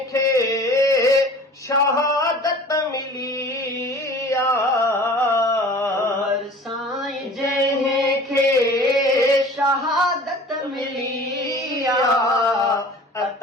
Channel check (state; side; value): normal; both; correlation 0.44